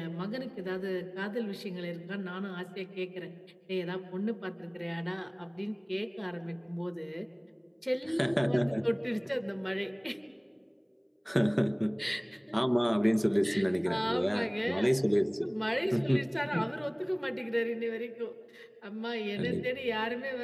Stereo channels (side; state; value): both; identical; correlation 1.00